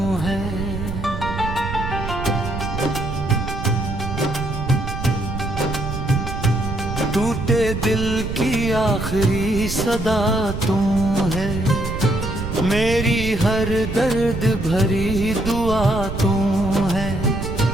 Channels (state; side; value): noise; right; rumble, 5 dB below the sound